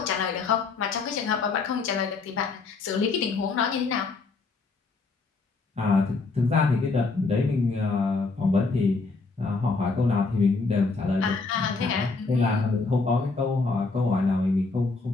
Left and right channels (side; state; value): right; quieter; 4.0 dB